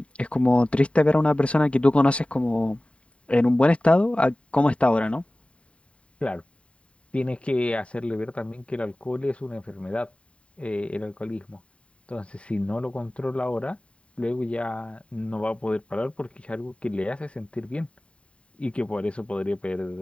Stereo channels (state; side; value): late; right; 0.061 ms